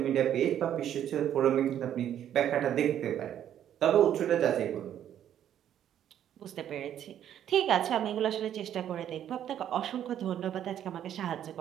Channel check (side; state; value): left; quieter; 10.4 dB